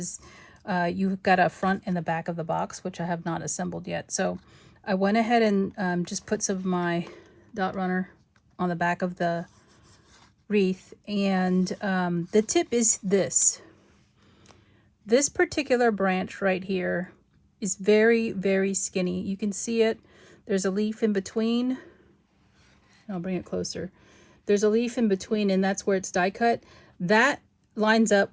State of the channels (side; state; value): both; identical; correlation 1.00